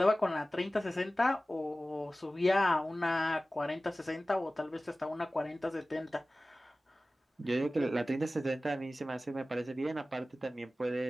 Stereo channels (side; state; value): both; normal; correlation 0.96